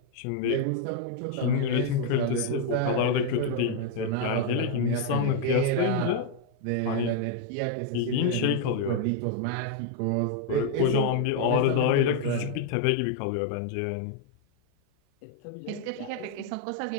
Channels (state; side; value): different; both; correlation 0.00